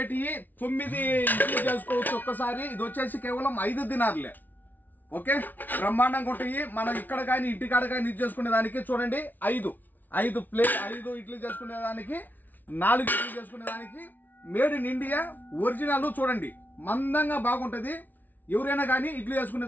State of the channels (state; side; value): late; right; 0.083 ms